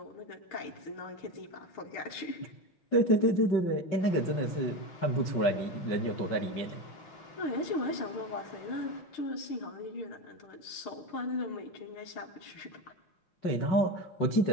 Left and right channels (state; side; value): late; right; 6.5 ms